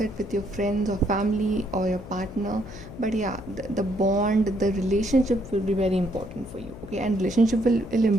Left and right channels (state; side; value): noise; left; hum, 14 dB below the sound